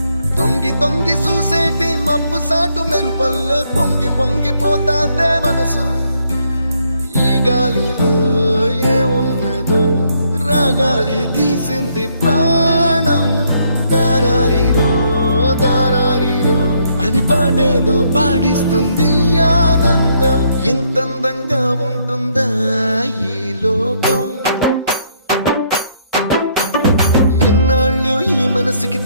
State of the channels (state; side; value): inverted; both; correlation -0.71